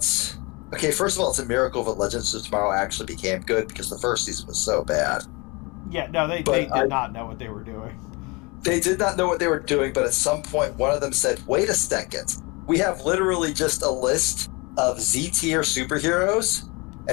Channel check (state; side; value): quieter; right; 27.3 dB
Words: Okay, first of all, it's a miracle that Legends of Tomorrow actually became good, because the first season was so bad. Yeah, no, they did not know what they were doing. They did not know what they were doing, but at some point, one of them said, wait a second, we have literally just a list of Z-tier superheroes,